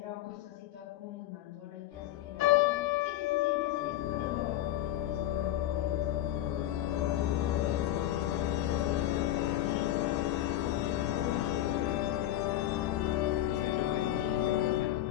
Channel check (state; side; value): quieter; right; 13.4 dB